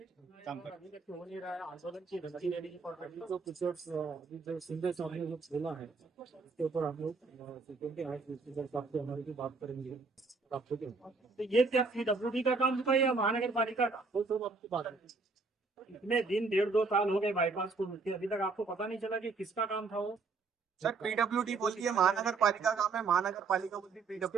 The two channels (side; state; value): left; quieter; 4.2 dB